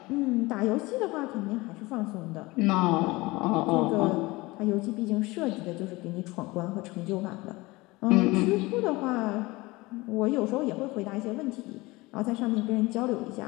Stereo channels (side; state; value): right; quieter; 21.9 dB